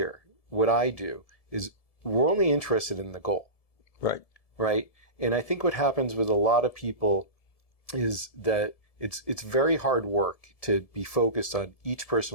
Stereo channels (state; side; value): late; right; 1.7 ms